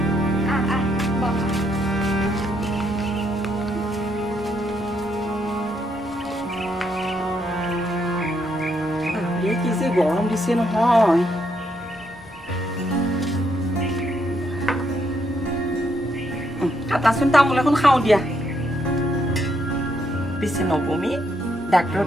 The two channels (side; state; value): both; normal; correlation 0.75